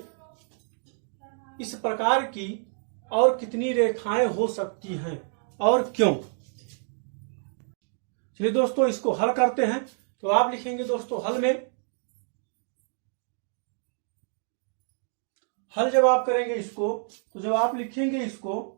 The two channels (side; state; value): left; silent; digital silence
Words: इस प्रकार की और कितनी रेखाएं हो सकती हैं और क्यों। चलिए दोस्तों, इसको हल करते हैं। तो आप लिखेंगे दोस्तों हल जब आप करेंगे इसको, तो जब आप लिखेंगे इसको,